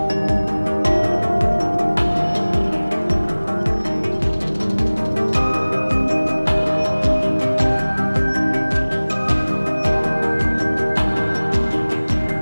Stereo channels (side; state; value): both; inverted; correlation -1.00